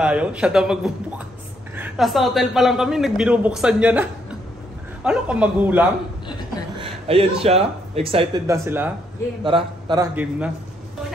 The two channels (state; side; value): normal; both; correlation 0.73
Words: Siya daw magbubukas. Nasa hotel pa lang kami, nagbinubuksan niya na. Ano ka magulang? Ayan siya. Excited na sila. Tara, game na.